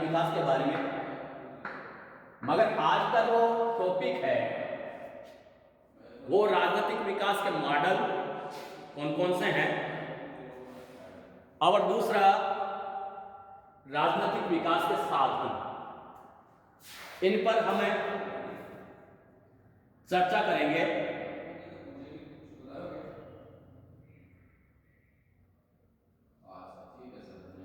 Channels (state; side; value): identical; both; correlation 1.00